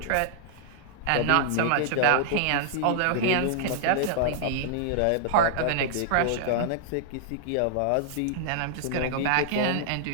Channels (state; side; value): different; both; correlation -0.01